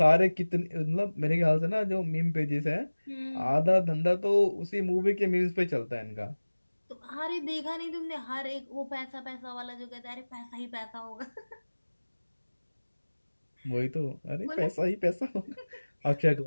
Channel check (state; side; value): inverted; both; correlation -1.00